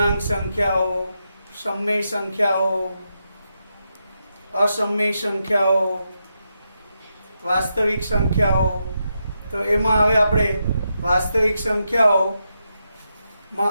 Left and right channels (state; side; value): inverted; both; correlation -0.85